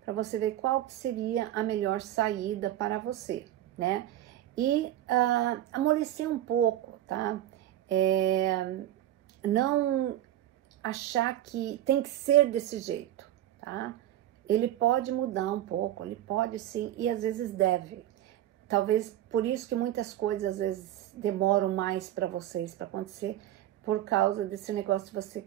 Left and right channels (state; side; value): quieter; left; 13.0 dB